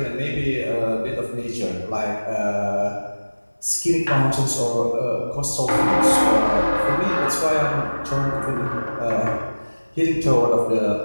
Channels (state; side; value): inverted; both; correlation -1.00